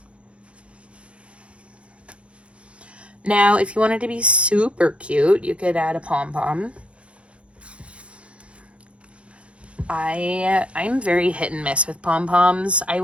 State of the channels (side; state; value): left; late; 0.060 ms